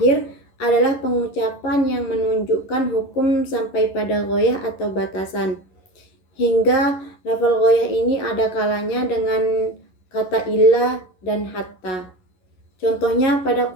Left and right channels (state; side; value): late; right; 11 ms